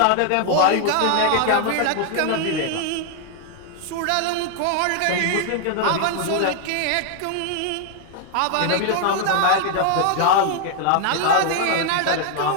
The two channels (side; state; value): both; different; correlation 0.00